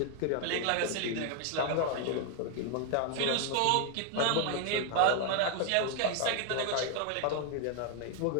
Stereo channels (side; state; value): both; different; correlation 0.00